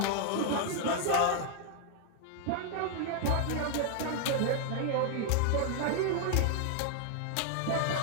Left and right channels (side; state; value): both; different; correlation 0.00